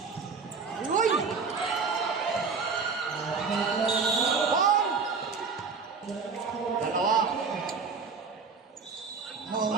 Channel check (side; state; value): left; quieter; 5.1 dB